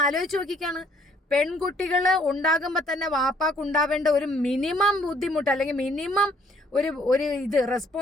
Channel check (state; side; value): normal; both; correlation 0.63